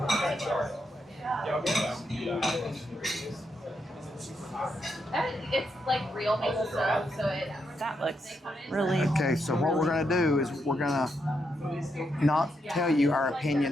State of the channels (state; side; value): normal; both; correlation 0.81